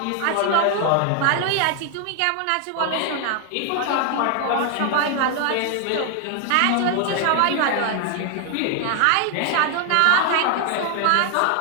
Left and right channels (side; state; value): both; different; correlation 0.00